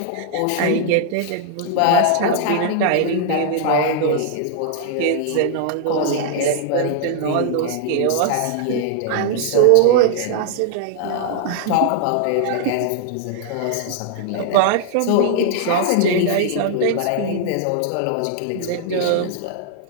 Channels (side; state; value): both; different; correlation -0.01